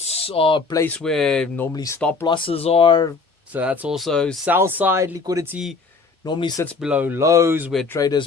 are a place where normally stop losses are. So that's also sell-side liquidity. Normally sits below lows where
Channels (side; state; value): right; quieter; 4.3 dB